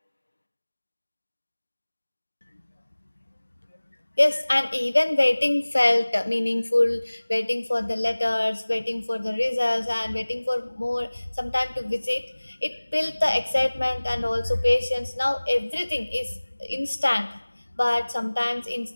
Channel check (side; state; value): both; inverted; correlation -1.00